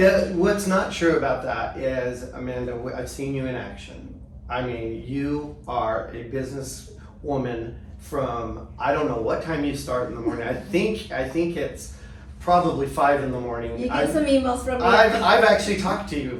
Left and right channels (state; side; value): identical; both; correlation 1.00